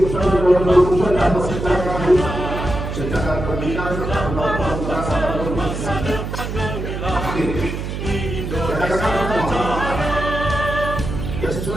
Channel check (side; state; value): right; noise; hum, 5 dB below the sound